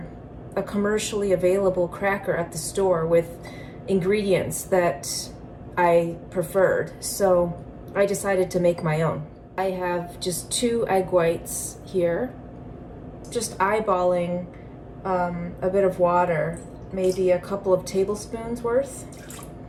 a commercially available cracker at the store with ingredients that I preferred. So I decided to make my own. I have just 2 egg whites here, just eyeballing a bit of water, maybe a couple of tablespoons worth.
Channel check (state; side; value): identical; both; correlation 1.00